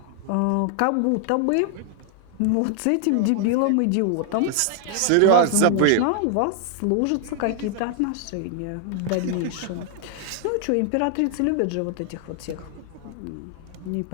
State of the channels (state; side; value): different; both; correlation 0.00